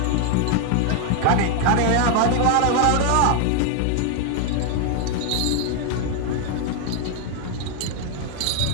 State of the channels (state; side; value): different; both; correlation 0.01